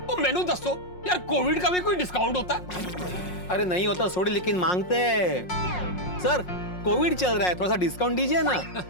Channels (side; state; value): right; late; 5.5 ms